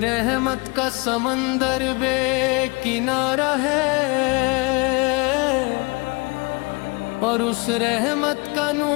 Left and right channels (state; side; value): quieter; right; 28.3 dB